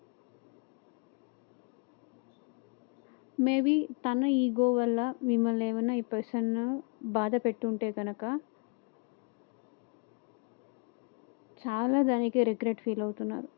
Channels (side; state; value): right; quieter; 34.8 dB